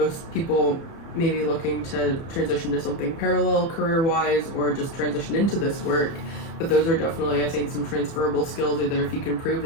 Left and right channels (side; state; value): right; late; 30 ms